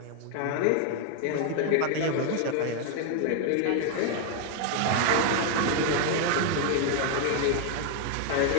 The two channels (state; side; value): different; both; correlation 0.00